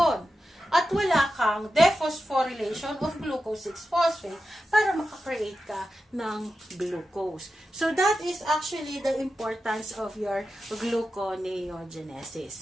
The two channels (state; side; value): normal; both; correlation 0.91